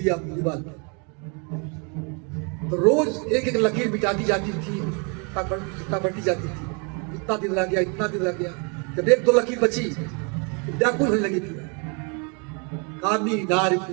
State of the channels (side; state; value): left; quieter; 35.0 dB